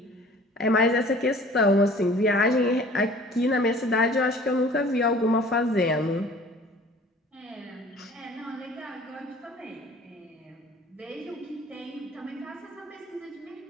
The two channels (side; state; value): both; normal; correlation 0.49